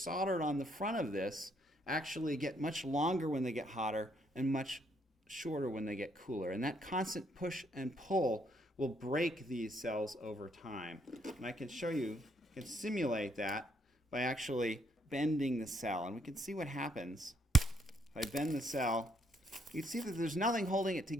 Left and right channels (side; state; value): both; normal; correlation 0.71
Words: on the front of this actually get much longer when they get hotter and much shorter when they get cooler. And that constant push and pull will break these cells over time. And I can show you, I can simulate that by actually bending the cell. And we can see what happens. If I bend the cell, you can see that there's nothing holding it